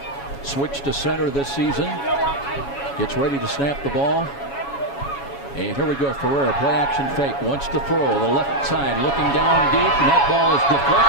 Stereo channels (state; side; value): late; right; 7.2 ms